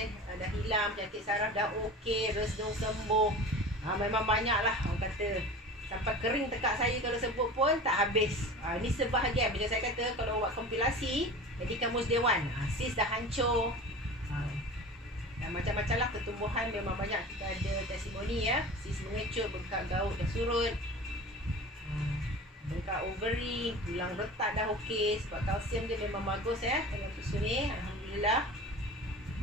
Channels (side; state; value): both; normal; correlation 0.36